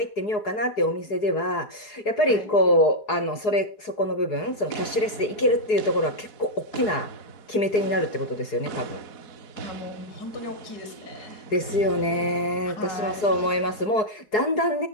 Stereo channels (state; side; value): late; right; 4.8 ms